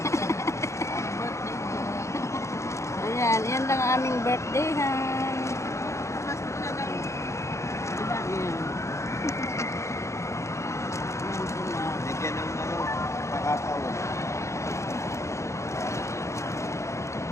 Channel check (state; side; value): late; right; 0.14 ms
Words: Ayan, yan lang ang aming birthday, ha? Ayan. Ayan sila. Bigyan ng kakao.